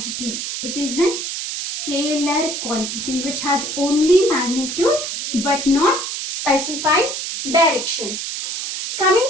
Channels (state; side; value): noise; right; hiss, 4 dB below the sound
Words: It is a scalar quantity which has only magnitude but not specified direction.